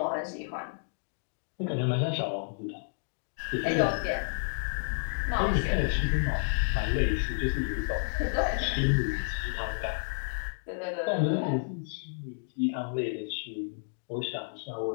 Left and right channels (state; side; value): silent; right; digital silence